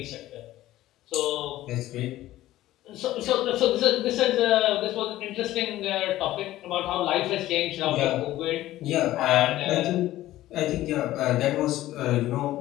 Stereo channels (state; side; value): quieter; right; 15.1 dB